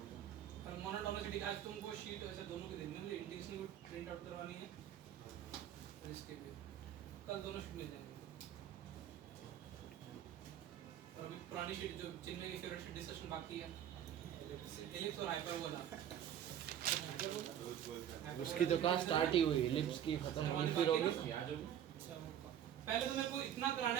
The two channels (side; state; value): left; quieter; 10.2 dB